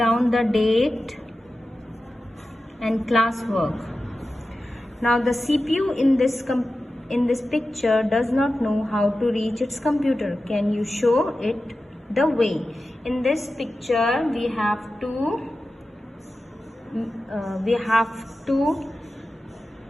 the date and classwork. Now the CPU in this picture does not know how to reach its computer. Can you show it the way? In this picture we have to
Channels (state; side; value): normal; both; correlation 0.93